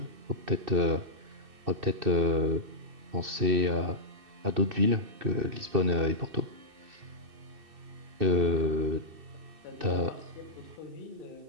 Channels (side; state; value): left; late; 2.6 ms